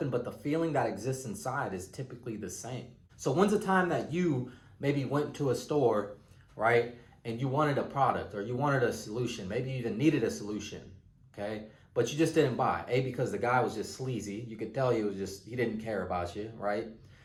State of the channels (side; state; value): both; identical; correlation 1.00